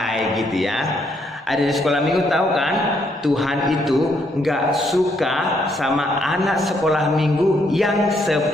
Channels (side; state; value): both; normal; correlation 0.73